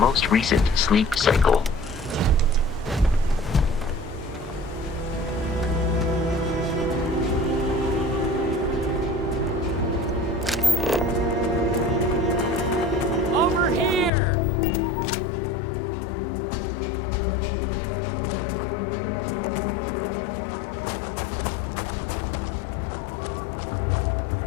recent sleep cycle. Over here!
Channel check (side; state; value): right; drops out; at 14.1 s